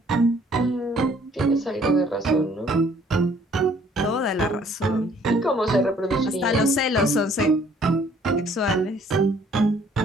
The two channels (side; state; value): both; normal; correlation 0.60